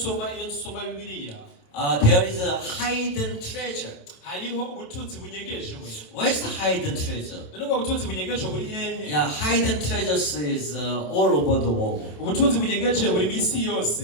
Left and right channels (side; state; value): right; late; 27 ms